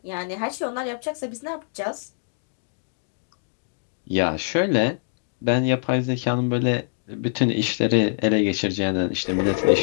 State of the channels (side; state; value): right; silent; digital silence